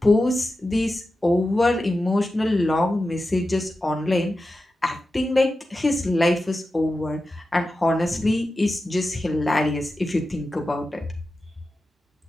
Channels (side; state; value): both; normal; correlation 0.92